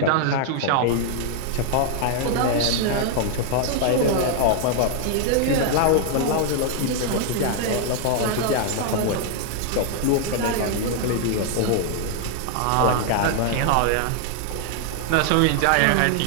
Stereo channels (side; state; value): both; different; correlation 0.00